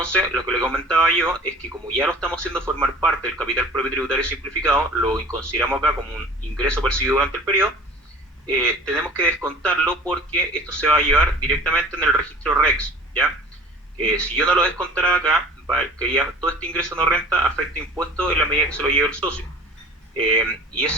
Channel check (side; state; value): both; normal; correlation 0.44